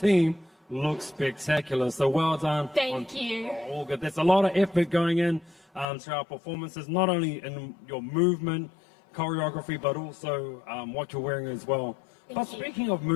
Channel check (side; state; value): right; drops out; at 5.9 s